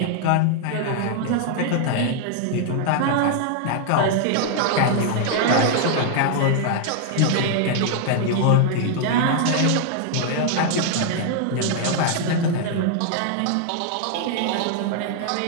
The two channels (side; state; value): both; different; correlation 0.00